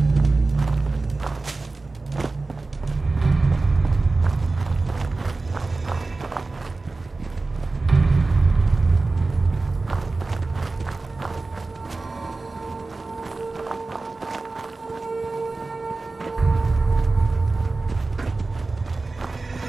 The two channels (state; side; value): quieter; left; 3.5 dB